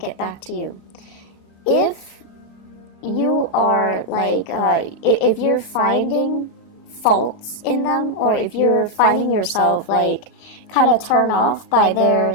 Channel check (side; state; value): both; normal; correlation 0.00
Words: back to you. If you are like, if you're finding faults in them, or if you're finding yourself like kind of turned off by their